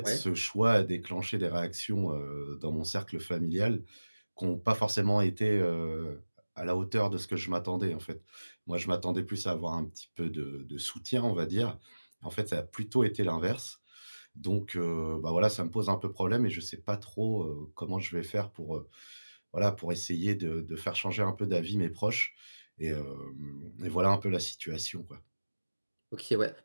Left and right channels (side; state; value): both; inverted; correlation -1.00